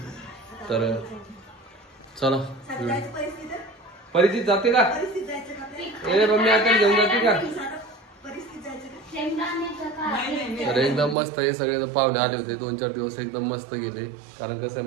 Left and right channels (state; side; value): drops out; left; at 11.2 s